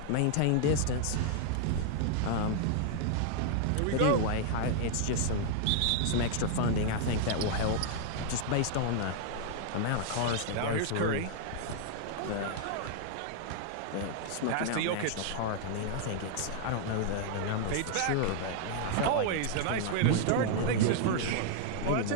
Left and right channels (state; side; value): different; both; correlation 0.00